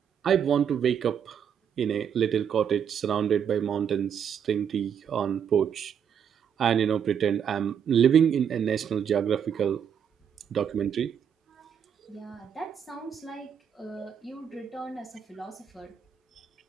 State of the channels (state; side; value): quieter; left; 8.0 dB